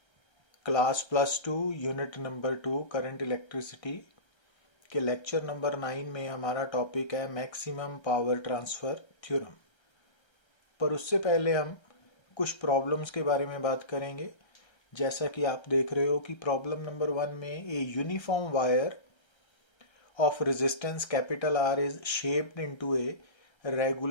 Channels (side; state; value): right; late; 1.3 ms